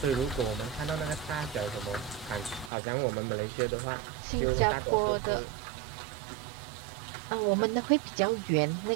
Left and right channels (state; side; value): drops out; left; at 2.7 s